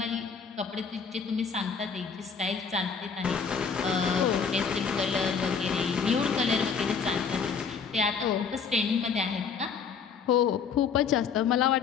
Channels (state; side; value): quieter; right; 6.1 dB